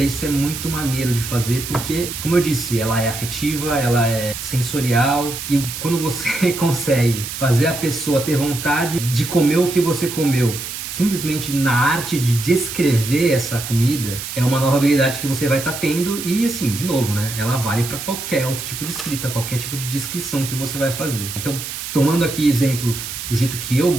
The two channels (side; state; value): right; noise; hiss, 7 dB below the sound